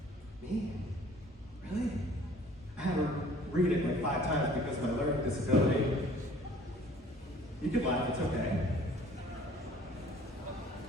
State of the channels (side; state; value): both; normal; correlation 0.53